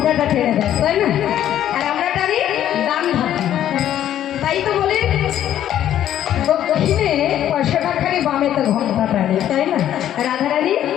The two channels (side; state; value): right; quieter; 11.3 dB